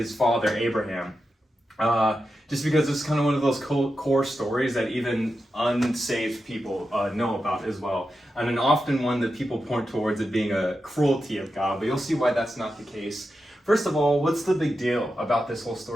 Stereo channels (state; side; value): normal; both; correlation 0.89